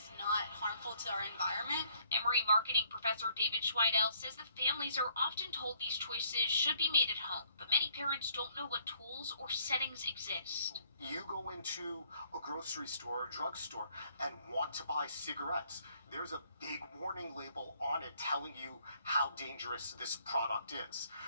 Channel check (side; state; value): both; inverted; correlation -0.65